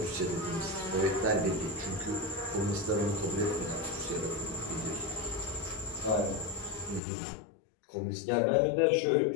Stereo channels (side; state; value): right; drops out; at 7.0 s